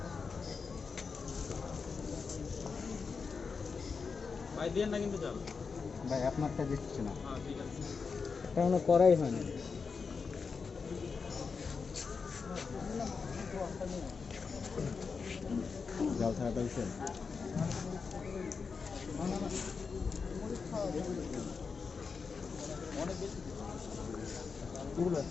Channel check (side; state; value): right; quieter; 5.2 dB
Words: ভাই দেন না কিন্তু জাল ভাই আপনারটা দিচ্ছি না হ্যাঁ ঠিক আছে এটা কোনো করাই হয় না জাল ছাড়া পাইছে অনেক বেশি পুরো